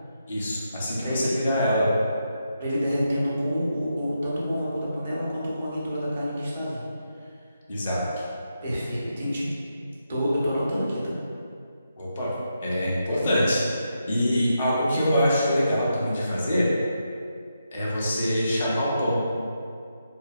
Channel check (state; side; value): inverted; both; correlation -0.84